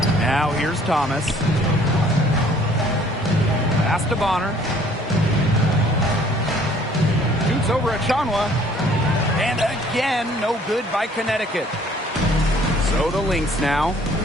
Now here's Thomas. Pass to Bonner. Shoots over Achanwa. And again, no good by Connecticut. So the Lynx now,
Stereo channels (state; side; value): normal; both; correlation 0.57